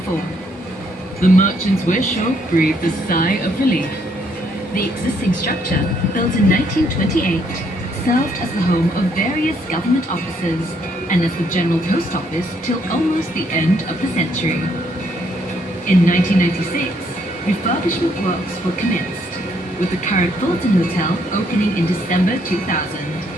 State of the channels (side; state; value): both; normal; correlation 0.70